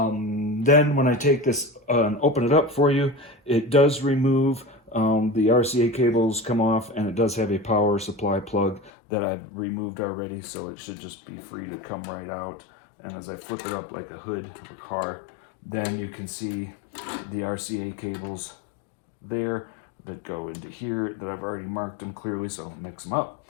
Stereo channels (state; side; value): drops out; right; at 8.9 s